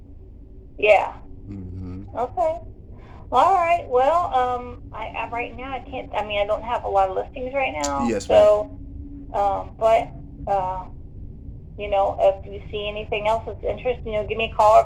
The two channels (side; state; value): both; identical; correlation 1.00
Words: yeah. Hmm. Okay. Well, all right. Well, I right now I can't. I mean, I don't have a lot of listings right now. Yes, ma'am. So, but uh, if you see anything else that's interesting, give me a call.